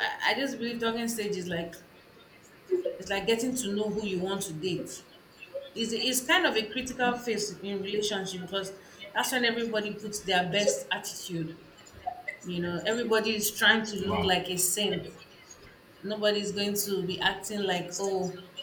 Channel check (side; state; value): both; identical; correlation 1.00